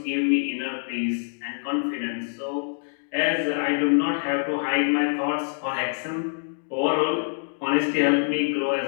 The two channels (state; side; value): silent; right; digital silence